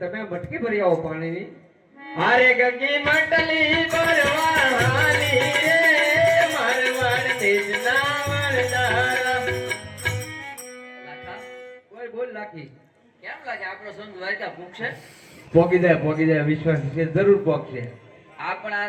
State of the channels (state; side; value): identical; both; correlation 1.00